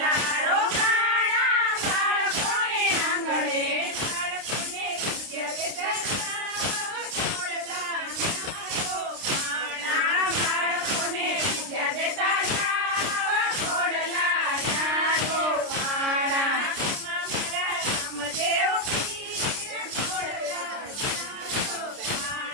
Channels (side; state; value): left; late; 29 ms